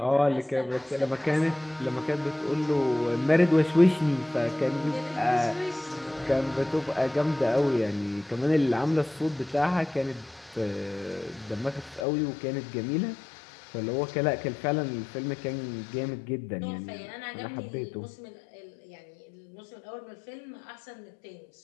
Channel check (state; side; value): drops out; right; at 12.1 s